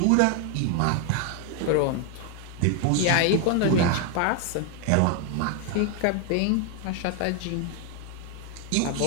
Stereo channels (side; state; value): both; different; correlation 0.01